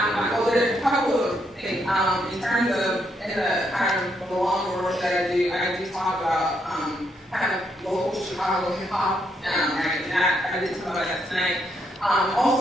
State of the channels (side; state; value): both; normal; correlation 0.77